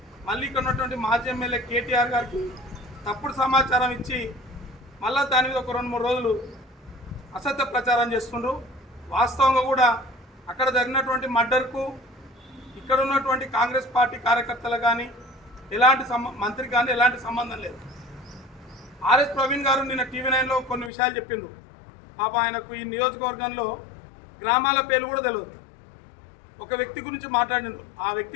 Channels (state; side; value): drops out; right; at 20.9 s